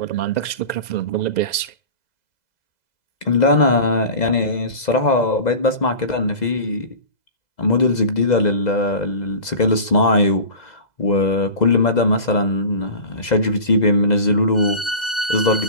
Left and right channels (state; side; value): late; right; 2.0 ms